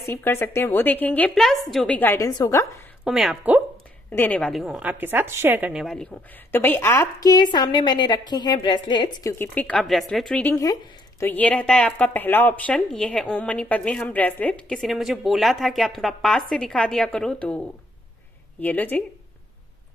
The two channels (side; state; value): both; normal; correlation 0.70